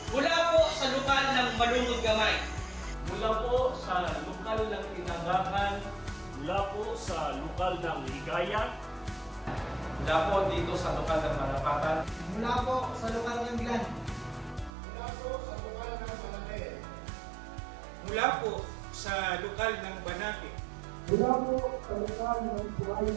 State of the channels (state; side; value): drops out; left; at 14.7 s